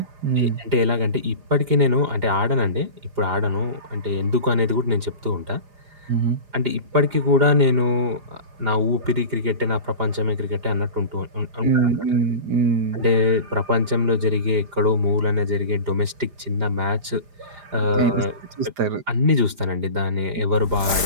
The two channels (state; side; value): late; left; 5.0 ms